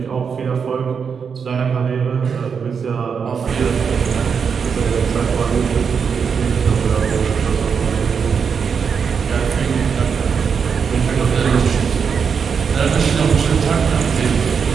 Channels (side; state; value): left; quieter; 6.3 dB